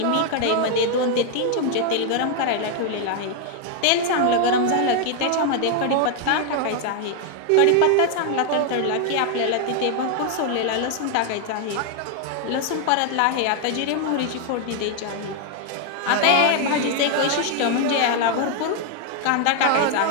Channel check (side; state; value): both; different; correlation 0.00